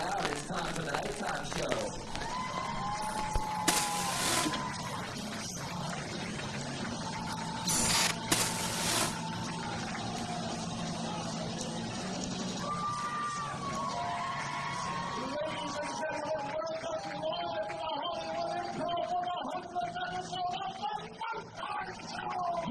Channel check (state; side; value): identical; both; correlation 1.00